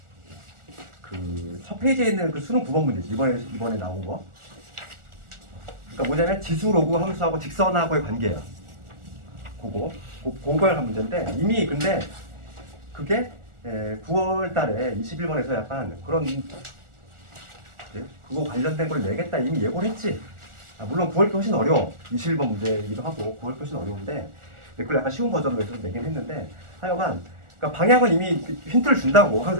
첫 페이지에 있는 수능 9번 문제지 이번에 나온 거. 그러니까 뭐냐면 지수 로그 함수하고 직선하고의 관계야. 그걸 한 문제인데 이미 근데 그게 9월 달에 21번에서 약간 그런 그거 관련된 걸 내겠다 이미 예고를 했지. 물론 9월 게 훨씬 어려워. 21번 문제이기도 하고 9월 게 훨씬 어려운데 그걸 약간 쉬운 버전으로 해서 내긴 했는데 하여간 그러니까 방향은 이미 힌트를 준다고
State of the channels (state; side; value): late; left; 1.4 ms